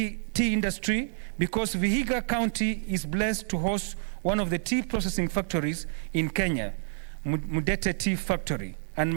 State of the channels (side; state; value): left; silent; digital silence